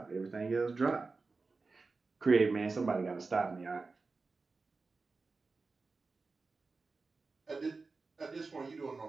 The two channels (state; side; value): quieter; left; 4.0 dB